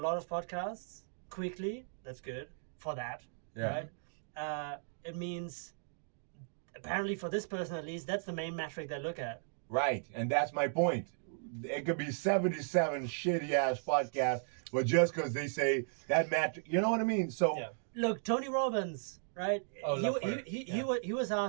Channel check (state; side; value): silent; left; digital silence